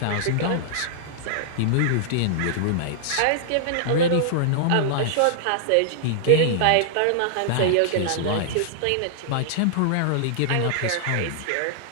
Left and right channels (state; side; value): different; both; correlation -0.01